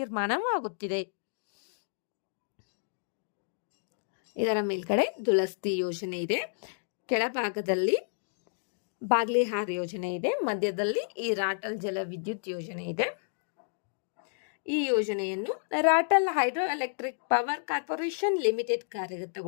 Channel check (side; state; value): right; silent; digital silence